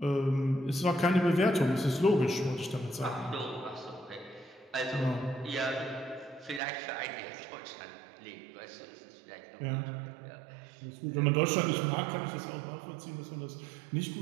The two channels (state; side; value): drops out; left; at 6.6 s